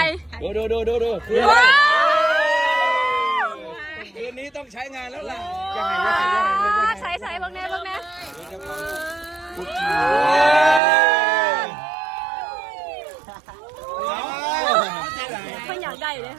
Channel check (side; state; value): left; drops out; at 10.8 s